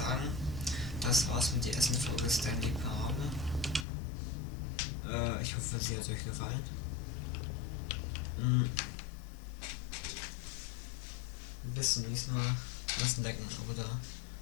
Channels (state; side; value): drops out; right; at 3.9 s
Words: das war's mit der ersten Folge Stanley Parable. Ich hoffe, sie hat euch gefallen. Bis zum nächsten Mal. Lasst ein Like und ein Abo